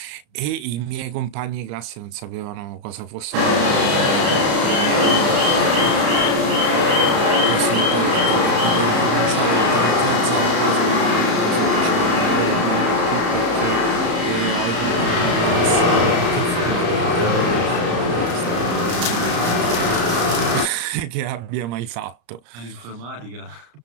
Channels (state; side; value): late; left; 34 ms